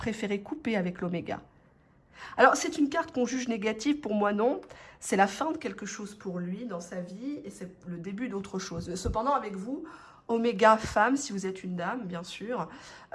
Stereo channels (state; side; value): identical; both; correlation 1.00